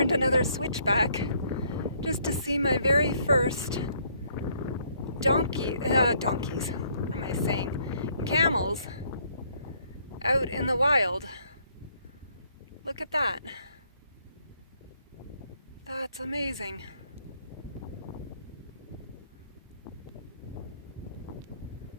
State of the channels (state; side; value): inverted; both; correlation -0.67